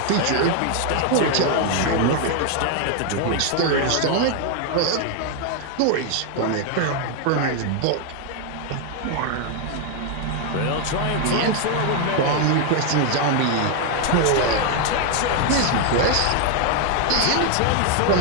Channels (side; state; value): both; different; correlation 0.01